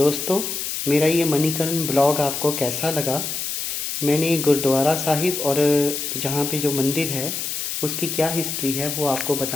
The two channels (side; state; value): left; noise; hiss, 3 dB below the sound